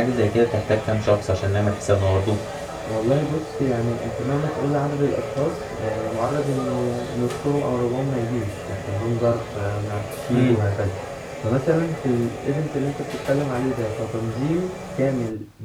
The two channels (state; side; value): identical; both; correlation 1.00